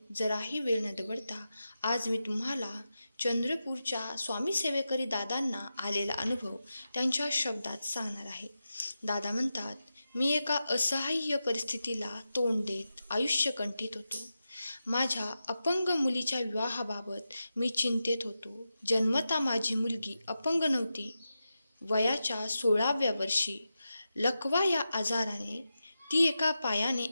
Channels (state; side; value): inverted; both; correlation -0.91